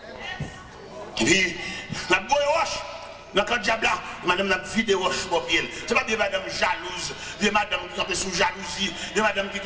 Et puis, La boue roche. Dans le diable là, madame n'a vidé roche pour pied. C'est pas des madame jalouses, des madame qui campent sous jalousie, des madame qui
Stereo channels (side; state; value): both; identical; correlation 1.00